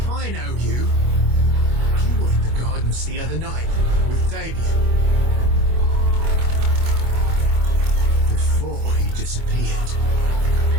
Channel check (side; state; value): left; late; 25 ms